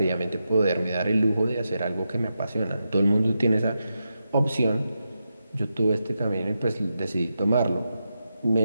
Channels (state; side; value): inverted; both; correlation -0.87